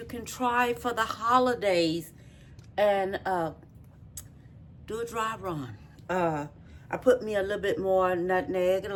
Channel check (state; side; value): identical; both; correlation 1.00